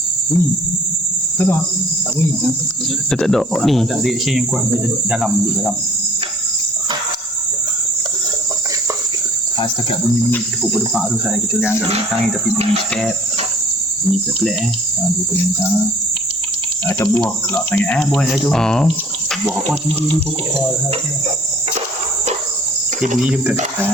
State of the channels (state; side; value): normal; both; correlation 0.53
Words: bunyi. Tak bunyi. Dia tak ada ni. Tak ada reaction yang kuat dalam. Setakat bunyi tepuk berdepak tu saya kita angkat bintang ni tapi bunyi step. Bunyi pelik dua bintang. Atau buah kelak sangat buah dia tu. Buah apa tinggi ni pokok dia bunyi dia bukan kat atas